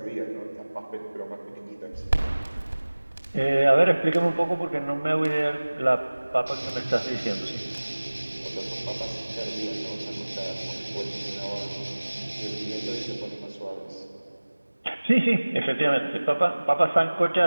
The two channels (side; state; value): both; inverted; correlation -1.00